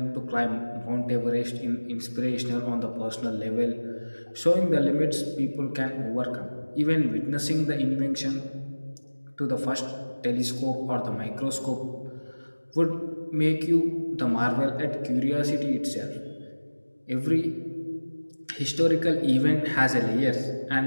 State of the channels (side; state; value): both; inverted; correlation -1.00